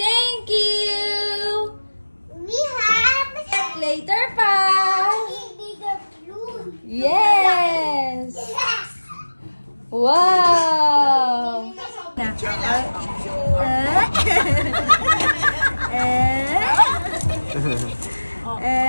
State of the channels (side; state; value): both; inverted; correlation -1.00